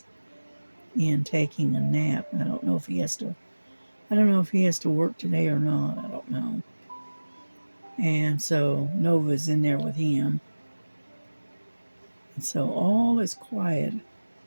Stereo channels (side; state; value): both; inverted; correlation -1.00